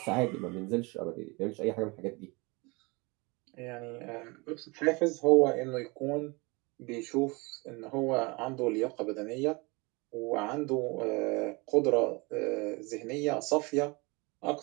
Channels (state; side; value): quieter; left; 27.1 dB